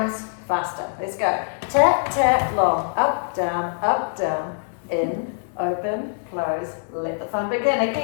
faster. Let's go. Tap, tap, long, up, down, in, open, close. Let the fun begin.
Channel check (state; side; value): silent; right; 62 dB below the other